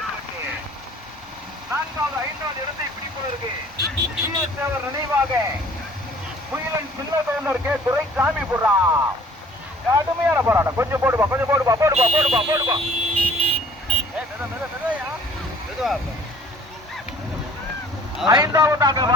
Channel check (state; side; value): normal; both; correlation 0.52